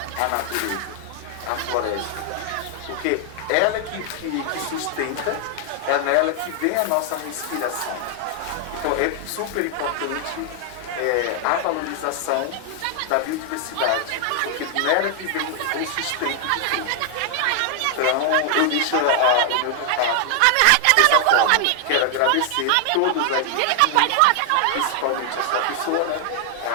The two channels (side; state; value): both; different; correlation 0.00